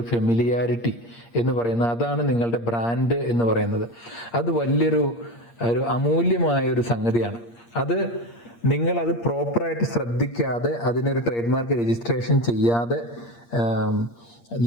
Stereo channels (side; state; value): right; late; 8.6 ms